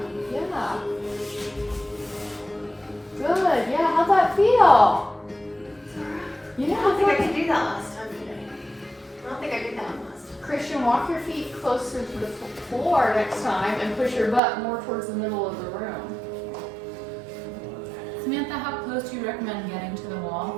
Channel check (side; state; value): left; drops out; at 14.4 s